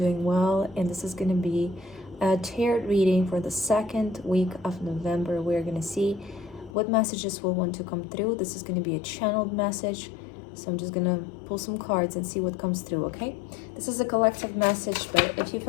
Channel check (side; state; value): right; drops out; at 6.8 s